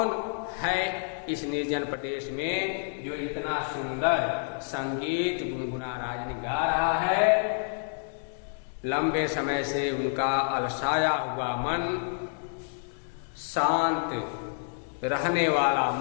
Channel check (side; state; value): right; silent; digital silence